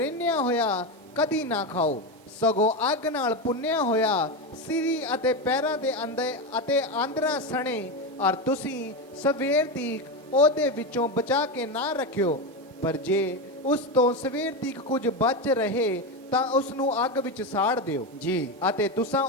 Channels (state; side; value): normal; both; correlation 0.14